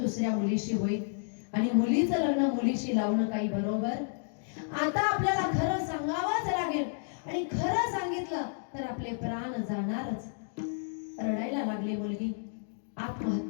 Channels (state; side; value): silent; right; digital silence